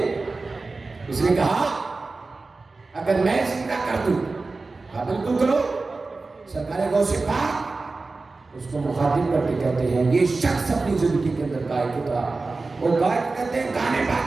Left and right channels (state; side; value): quieter; left; 3.7 dB